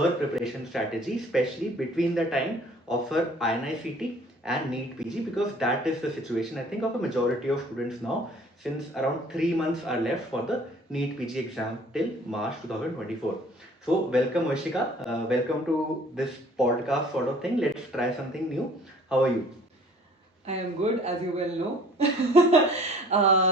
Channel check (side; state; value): both; normal; correlation 0.53